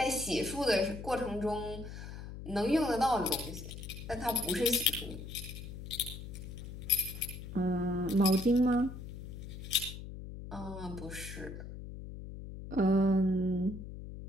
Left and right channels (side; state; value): left; noise; hum, 10 dB below the sound